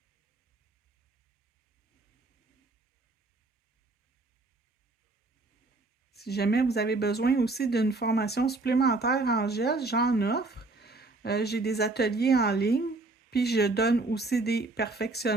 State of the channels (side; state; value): left; quieter; 3.3 dB